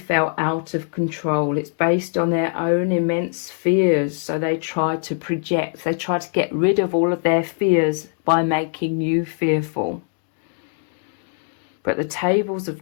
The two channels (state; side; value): silent; right; 56 dB below the other